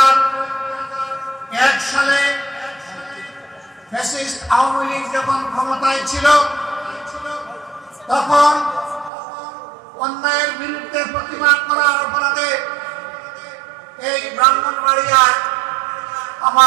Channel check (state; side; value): drops out; left; at 9.1 s